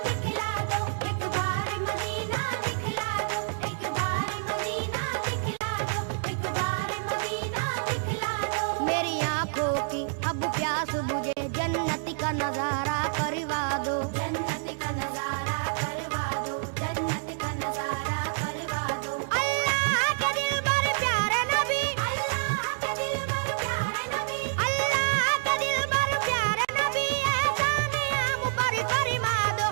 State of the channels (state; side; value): silent; left; digital silence